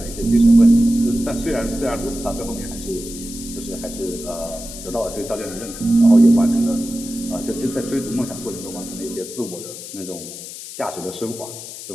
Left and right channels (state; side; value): noise; left; hiss, 12 dB below the sound